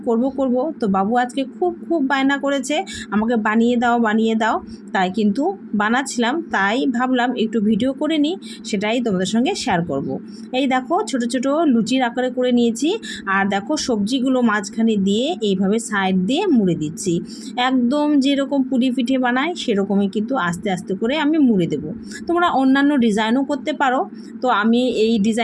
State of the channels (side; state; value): both; identical; correlation 1.00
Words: করব, তো বাবু আজকে খুব বায়না করেছে আমাকে বানিয়ে দাও। তাই কিন্তু বানাচ্ছিলাম, তাই ভাবলাম একটু ভিডিও করে নিই, সেটাই তোমাদের সঙ্গে শেয়ার করব। এই দেখো ছোট ছোট লুচির আকারে করে নিয়েছি। আর দেখো সবজিগুলো মাঝখানে দিয়ে এইভাবে সাইড দিয়ে মুড়ে দিচ্ছি, একদম যেরকম পুরি পিঠে বানায় সেরকমই কিন্তু আস্তে আস্তে করে আমি মুড়ে দেবো। তোমরা অন্যান্য ডিজাইনও করতে পারো, তো আমি এই